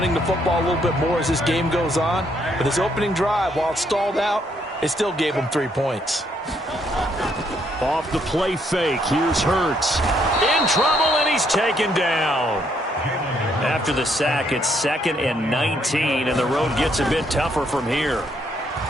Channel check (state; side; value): normal; both; correlation 0.71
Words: the football a little bit more as this game goes on. But this opening drive, while it stalled out, it still gave them 3 points. Off the play fake, here's Hurts. In trouble, and he's taken down. After the sack, it's 2nd and 19, and the road gets a bit tougher from here.